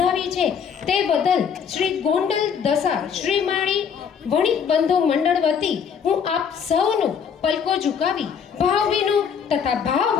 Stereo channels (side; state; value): right; quieter; 7.1 dB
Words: છે, તે બદલ શ્રી ગોંડલ દશા શ્રીમાળી વણિક બંધુ મંડળ વતી હું આપ સૌનું પલકો ઝુકાવી ભાવભીનું તથા